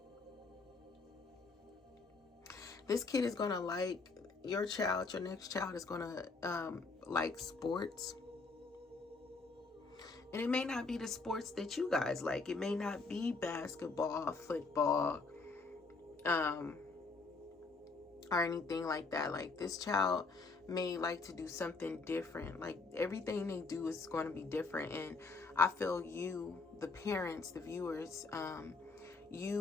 This kid is going to like, your child, your next child is going to like sports. And it may not be the sports that you guys like. It may not be basketball, football, or anything like that. Like, this child may like to do something different. Like, everything they do is going to be different. And I feel you, the parents, the viewers,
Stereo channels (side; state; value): right; quieter; 4.0 dB